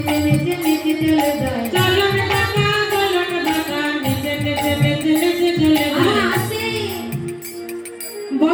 নেচে নেচে চলে যায়। চলো রে বাঁকা বলো রে বাঁকা, নেচে নেচে নেচে নেচে চলে যায়। আসে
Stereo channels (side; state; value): both; identical; correlation 1.00